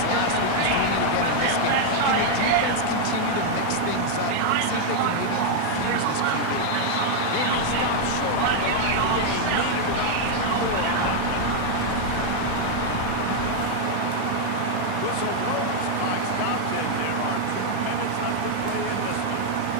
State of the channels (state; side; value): different; both; correlation 0.00